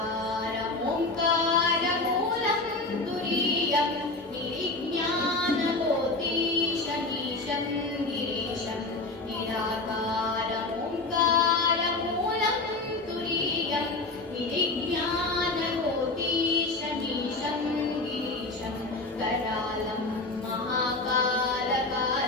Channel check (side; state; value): right; quieter; 3.2 dB